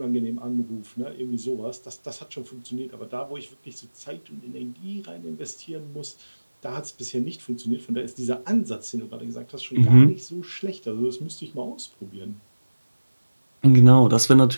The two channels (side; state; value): both; inverted; correlation -1.00